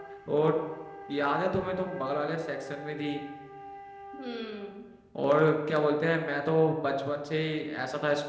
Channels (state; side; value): identical; both; correlation 1.00